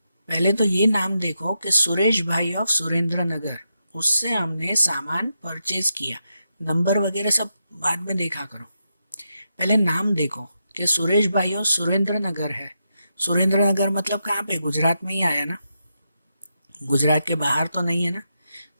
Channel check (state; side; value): inverted; both; correlation -0.85